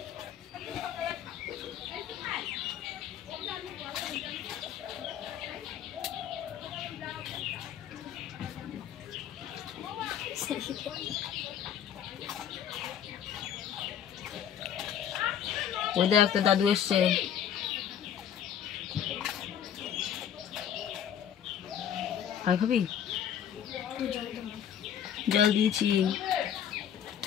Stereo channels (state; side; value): quieter; right; 9.3 dB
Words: ওই দেখ, তোর দাদু এসছে। আর খাবি? জল দিয়েছি।